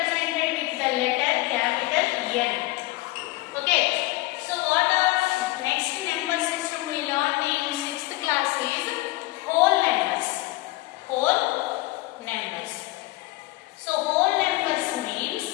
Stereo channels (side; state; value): right; quieter; 20.1 dB